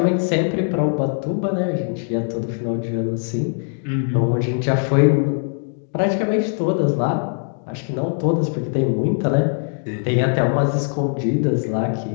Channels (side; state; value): right; silent; 60 dB below the other